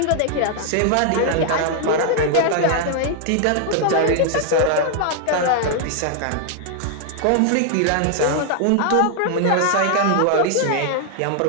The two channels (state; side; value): different; both; correlation 0.00